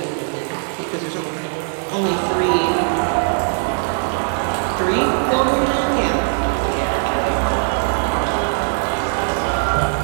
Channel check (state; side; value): silent; left; digital silence